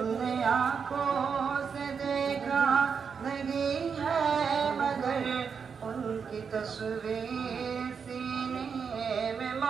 نے آنکھوں سے دیکھا نہیں ہے مگر، ان کی تصویر سینے میں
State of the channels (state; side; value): quieter; left; 6.2 dB